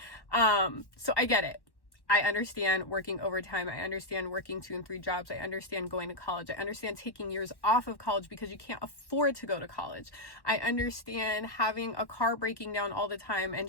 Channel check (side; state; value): right; late; 1.1 ms